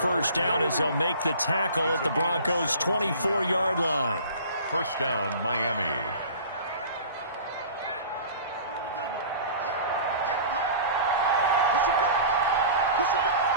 down as they'll make the tackle at the Broncos' 24-yard line. 1st down, Miami.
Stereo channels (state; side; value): inverted; both; correlation -0.41